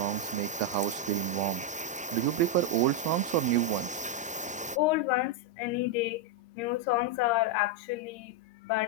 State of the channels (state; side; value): normal; both; correlation 0.02